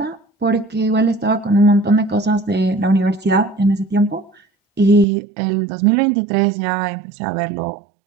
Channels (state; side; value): drops out; left; at 5.1 s